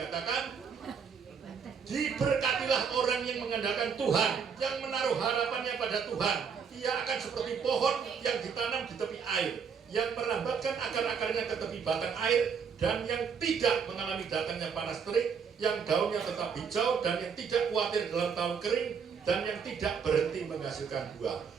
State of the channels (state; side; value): quieter; left; 6.4 dB